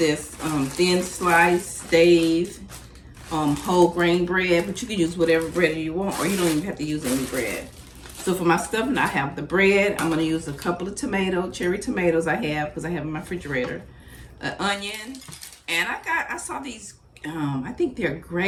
thin slice Dave whole grain bread, but you can use whatever bread you want, or you don't even have to use any bread. So for my stuffing, I have the bread. I'm gonna use a couple of cherry tomatoes I have, because I have in my refrigerator, an onion, and I saw these, I think they're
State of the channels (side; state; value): both; identical; correlation 1.00